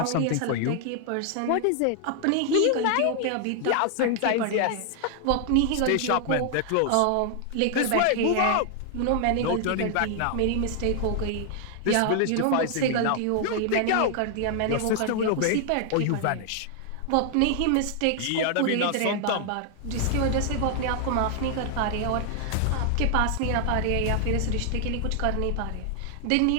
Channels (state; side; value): different; both; correlation 0.00